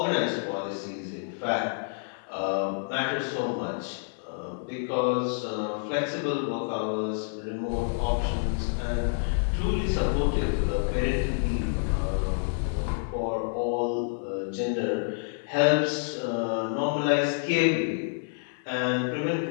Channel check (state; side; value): silent; right; 59 dB below the other